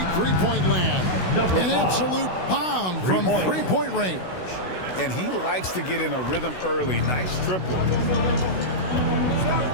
three-point land, an absolute bomb from three-point range. And he likes to get in a rhythm early. Nice triple.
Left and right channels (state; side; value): late; right; 16 ms